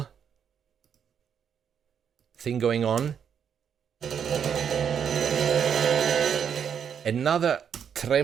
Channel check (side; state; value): left; quieter; 7.8 dB